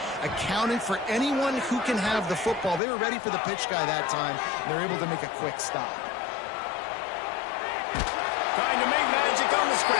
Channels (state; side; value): drops out; right; at 2.8 s